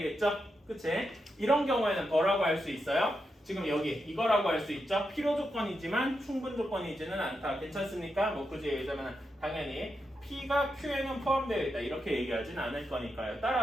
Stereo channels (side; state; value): both; normal; correlation 0.86